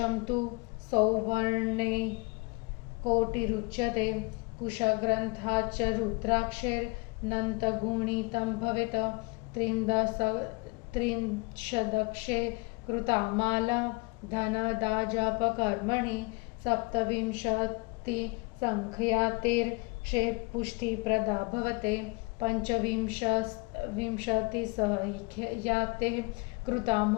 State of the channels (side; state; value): right; quieter; 28.2 dB